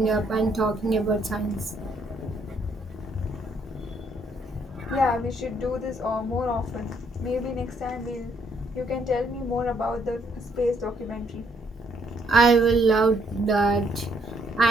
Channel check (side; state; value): both; normal; correlation 0.70